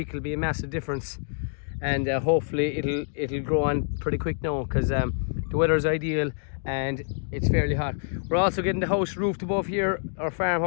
will be a massive difference, and hopefully it'll grow on pretty quick now, because the weather is ideal and it's fairly hot. We're also getting the house roofed above here, our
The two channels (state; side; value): silent; right; digital silence